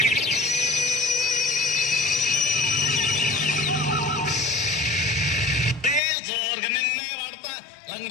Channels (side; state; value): right; drops out; at 6.0 s